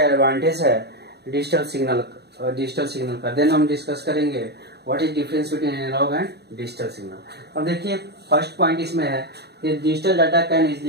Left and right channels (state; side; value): late; left; 0.48 ms